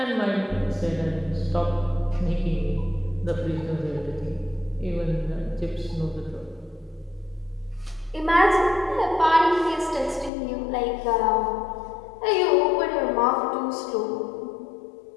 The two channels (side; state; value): right; drops out; at 10.3 s